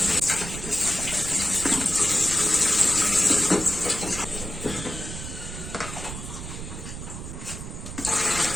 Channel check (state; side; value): noise; right; rumble, 9 dB below the sound